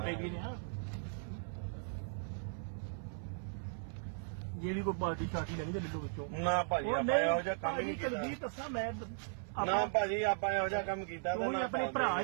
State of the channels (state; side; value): silent; left; 53 dB below the other